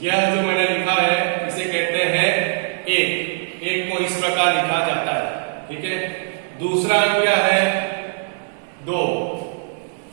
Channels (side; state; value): left; silent; digital silence